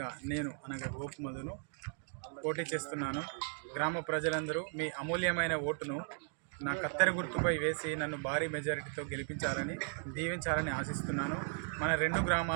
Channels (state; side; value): silent; left; 53 dB below the other